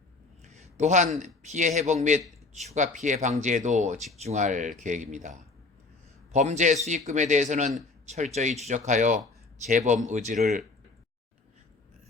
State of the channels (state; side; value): quieter; right; 3.7 dB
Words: 또한 피해 회복 및 추가 피해 방지에도 집중할 계획입니다. 범죄 수익금에 대해서는 철저히 추적하여 재범 의지를